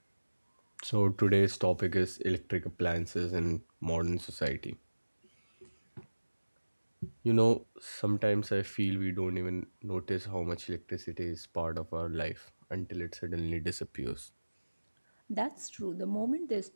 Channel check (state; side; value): inverted; both; correlation -1.00